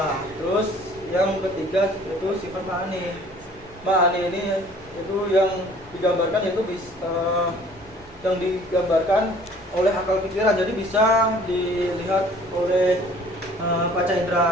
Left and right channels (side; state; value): right; noise; rumble, 24 dB below the sound